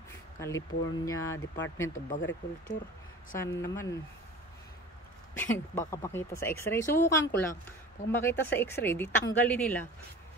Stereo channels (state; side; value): normal; both; correlation 0.39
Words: California Department of Agriculture. Sana naman baka makita sa x-ray. Subukan ko lang. Pag makita sa x-ray, di tanggalin nila.